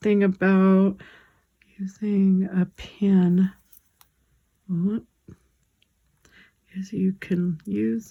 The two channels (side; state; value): both; identical; correlation 1.00